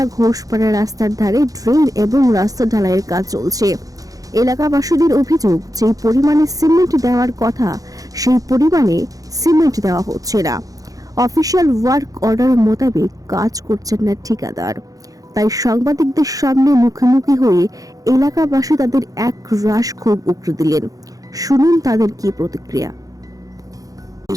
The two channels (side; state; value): left; late; 0.17 ms